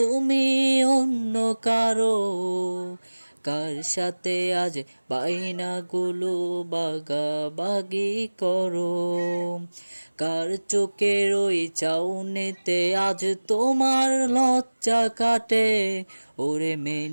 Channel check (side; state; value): both; inverted; correlation -1.00